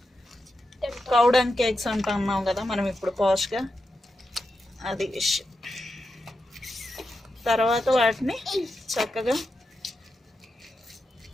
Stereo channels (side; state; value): both; normal; correlation 0.88